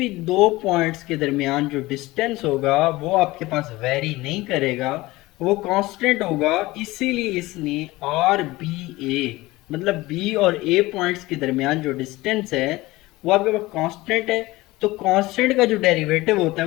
दो पॉइंट्स के दरमियान जो डिस्टेंस होगा वो आपके पास वेरी नहीं करेगा, वो कांस्टेंट होगा। इसीलिए इसने आर बी ए मतलब बी और ए पॉइंट्स के दरमियान जो डिस्टेंस है वो आपके पास कांस्टेंट है, तो कांस्टेंट का जो डेरिवेटिव होता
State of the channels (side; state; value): right; quieter; 19.7 dB